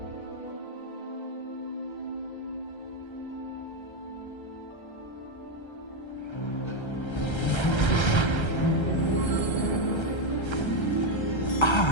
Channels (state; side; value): late; right; 1.3 ms